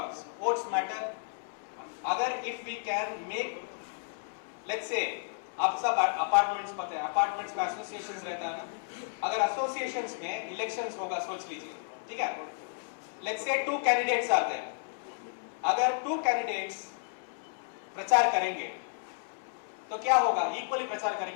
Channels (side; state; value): right; silent; 56 dB below the other